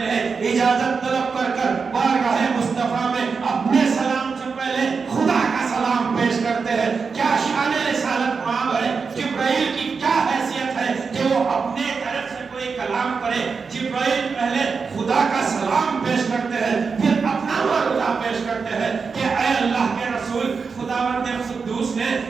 ہیں, اجازت طلب کر کر بارگاہ مصطفیٰ میں اپنے سلام سے پہلے خدا کا سلام پیش کرتے ہیں. کیا شان رسالت مآب ہے, جبرائیل کی کیا حیثیت ہے کہ وہ اپنے طرف سے کوئی کلام کرے. جبرائیل پہلے خدا کا سلام پیش کرتے ہیں پھر اپنا معروضہ پیش کرتے ہیں کہ اے اللہ کے رسول خداوند قدوس نے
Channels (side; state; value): left; quieter; 5.2 dB